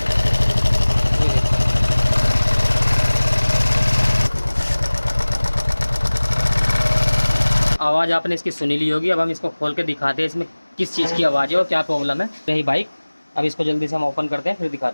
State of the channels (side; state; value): both; inverted; correlation -1.00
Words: आवाज़ आपने इसकी सुनी ली होगी। अब हम इसको खोल के दिखाते हैं इसमें किस चीज़ की आवाज़ है और क्या प्रॉब्लम है। यही बाइक, अब इसको जल्दी से हम ओपन करते हैं फिर